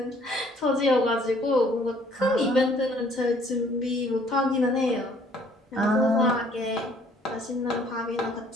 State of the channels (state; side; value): normal; both; correlation 0.59